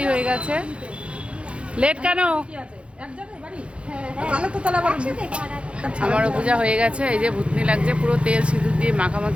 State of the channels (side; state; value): left; late; 0.059 ms